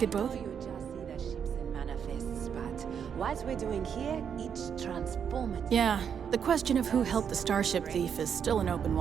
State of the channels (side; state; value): left; quieter; 7.6 dB